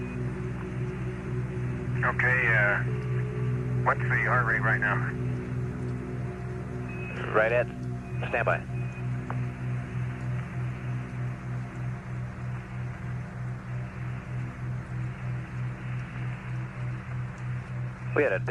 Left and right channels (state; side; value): identical; both; correlation 1.00